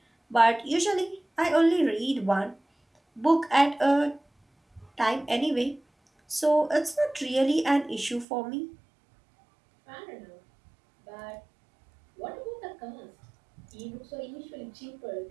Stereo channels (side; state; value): left; drops out; at 8.2 s